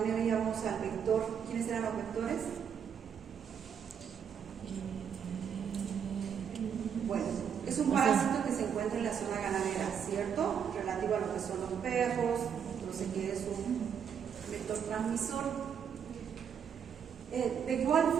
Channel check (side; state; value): left; quieter; 7.7 dB